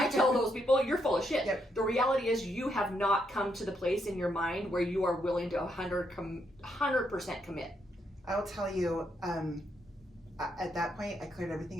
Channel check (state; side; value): normal; both; correlation 0.77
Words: tell those people, you're full of shit. Yep. The reality is you have not come to the place in your mind where you are willing to 100% commit. I'll tell you, at that point, I cleared